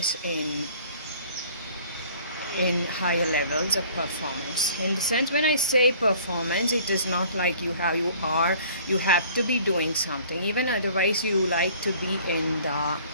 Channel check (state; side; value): inverted; both; correlation -0.51